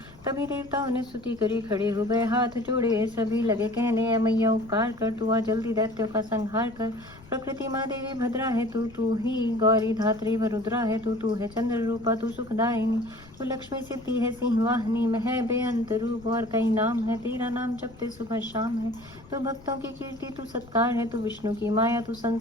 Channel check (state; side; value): noise; left; rumble, 22 dB below the sound